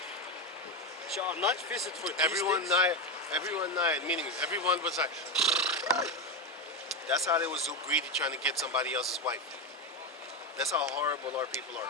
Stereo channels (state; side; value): normal; both; correlation 0.12